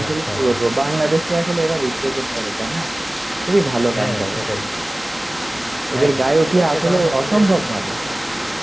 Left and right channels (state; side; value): normal; both; correlation 0.98